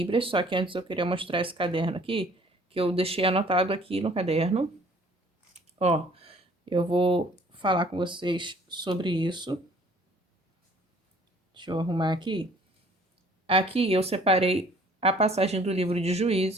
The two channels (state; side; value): normal; both; correlation 0.56